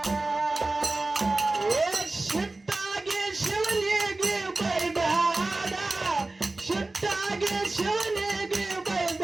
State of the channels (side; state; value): left; quieter; 3.1 dB